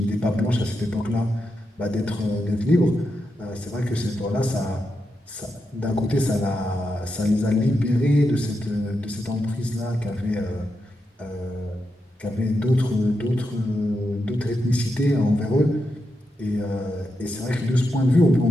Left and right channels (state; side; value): normal; both; correlation 0.86